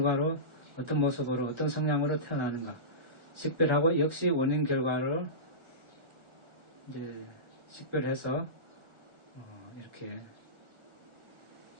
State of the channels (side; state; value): left; late; 1.4 ms